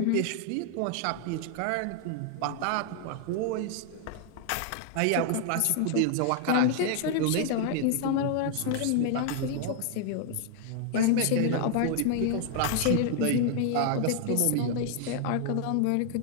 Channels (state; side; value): different; both; correlation 0.00